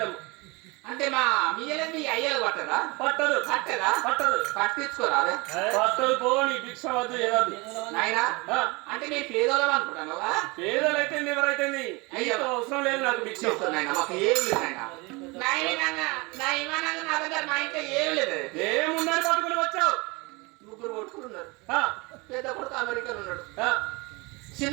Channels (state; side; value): quieter; left; 26.1 dB